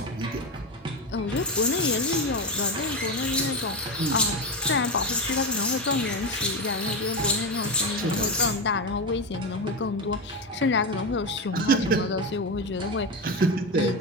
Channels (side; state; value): both; normal; correlation 0.16